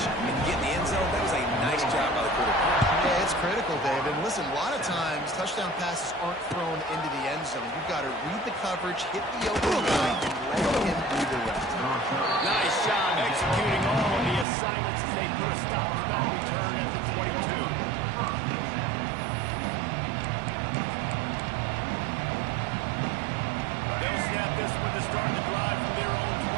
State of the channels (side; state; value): left; drops out; at 14.5 s